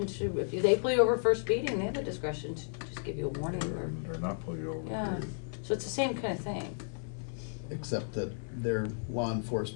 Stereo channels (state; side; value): silent; right; 55 dB below the other